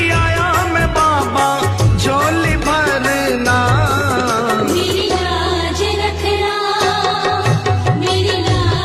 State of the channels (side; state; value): both; identical; correlation 1.00